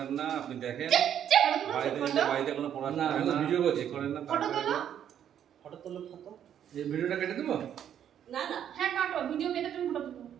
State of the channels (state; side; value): quieter; left; 9.6 dB